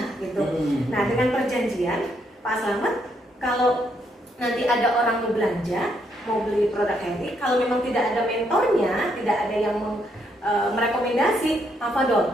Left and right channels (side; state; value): both; normal; correlation 0.74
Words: gitu. Nah dengan perjanjian Pak Slamet, kalau nanti ada orang mau belanja, mau beli produk Heri, kalau memang tidak ada mentornya, tidak ada yang merekomendasi,